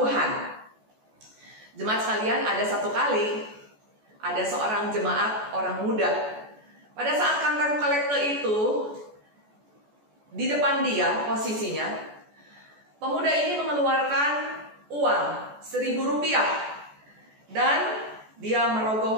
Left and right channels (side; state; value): left; late; 14 ms